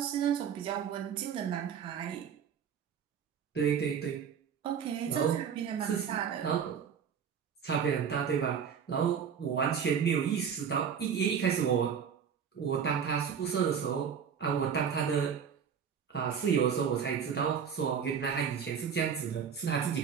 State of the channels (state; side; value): quieter; left; 7.4 dB